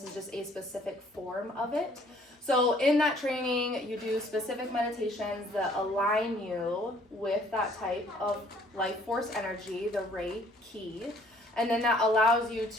is just a specific form of it. So in that training, you do specific meditations that align you with that type of life force energy, the Reiki. And then that allows you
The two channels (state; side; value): normal; both; correlation 0.59